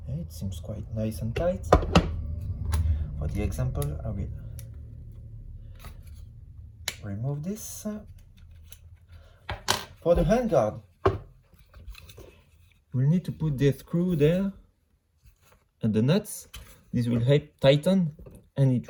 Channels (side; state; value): both; identical; correlation 1.00